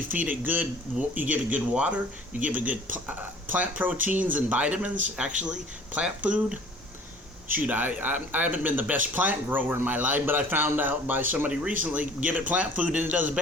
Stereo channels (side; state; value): both; normal; correlation 0.50